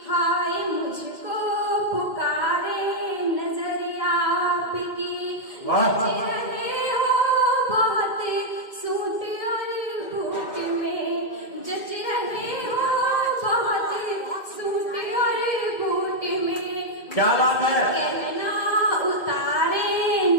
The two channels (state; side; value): late; right; 2.2 ms